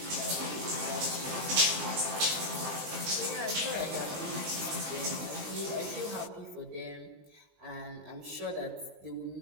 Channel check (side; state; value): left; late; 20 ms